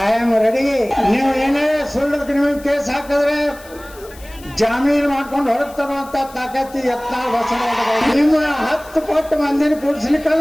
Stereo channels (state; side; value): noise; left; hiss, 22 dB below the sound